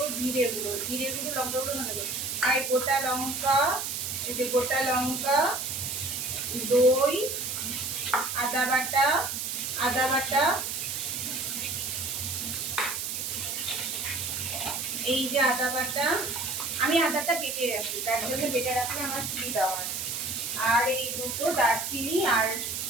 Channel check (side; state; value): right; noise; hiss, 3 dB below the sound